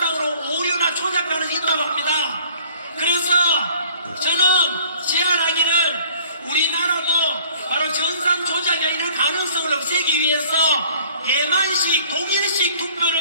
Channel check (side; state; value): both; inverted; correlation -0.53